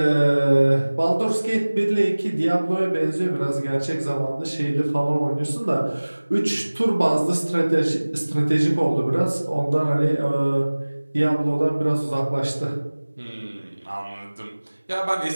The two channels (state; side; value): inverted; both; correlation -1.00